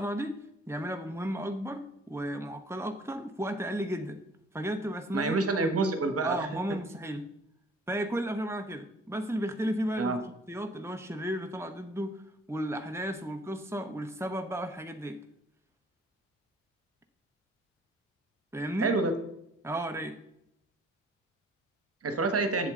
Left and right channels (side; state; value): both; normal; correlation 0.55